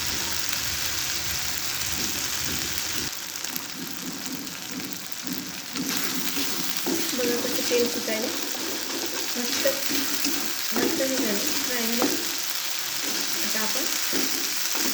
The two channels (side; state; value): both; identical; correlation 1.00